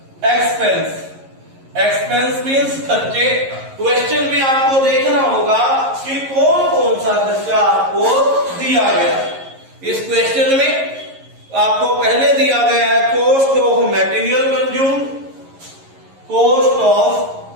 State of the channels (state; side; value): late; left; 11 ms